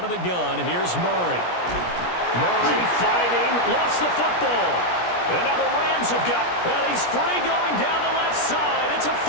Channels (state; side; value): late; right; 17 ms